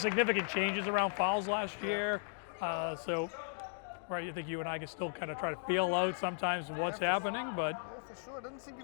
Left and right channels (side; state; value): right; silent; digital silence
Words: changes around fouls last year. So, right, you think you and I can still kind of try to feel out sometimes what's happening, but yeah, for sure. It doesn't seem to